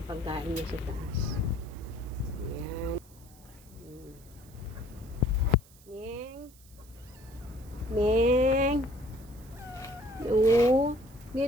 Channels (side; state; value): right; noise; hiss, 25 dB below the sound